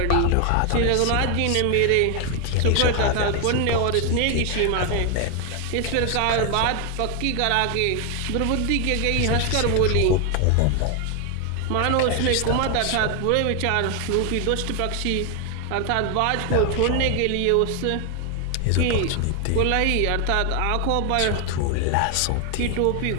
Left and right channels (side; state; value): both; different; correlation 0.01